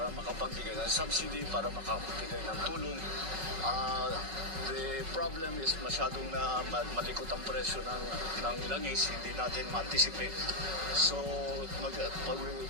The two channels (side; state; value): left; late; 5.4 ms